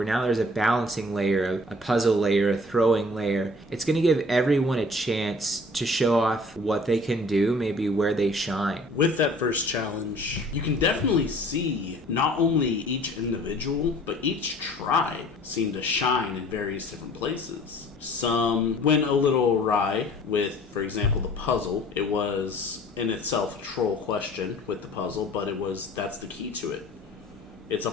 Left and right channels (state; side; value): normal; both; correlation 0.50